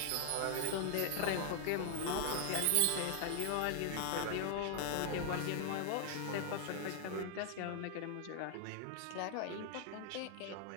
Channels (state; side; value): different; both; correlation 0.00